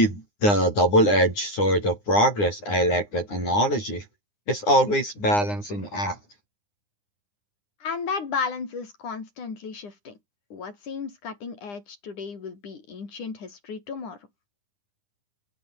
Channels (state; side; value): late; right; 9.8 ms